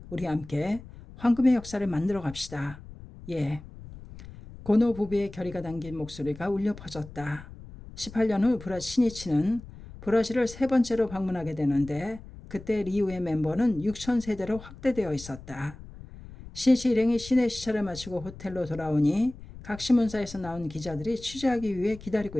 우리 함께 황금의 역사를 만들어 갑시다. 예. 고노 부부의 결의가 담긴 목소리가 울려 퍼졌다. 18년 후 신이치는 브라질을 세 번째로 방문하게 되는데 그때 리우의 멤버는 6,000세대로 확대되어 있었다. 신이치 일행이 시내 시차를 마치고 호텔로 돌아오니 각 신문사에서 나온 기자들이 취재하기 위해 기다리고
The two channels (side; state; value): left; noise; rumble, 16 dB below the sound